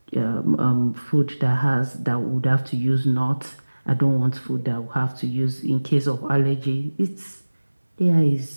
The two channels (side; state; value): both; inverted; correlation -1.00